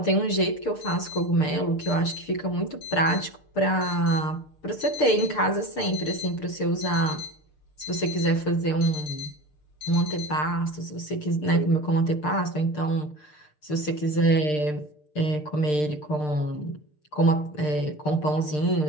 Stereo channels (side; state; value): right; late; 6.7 ms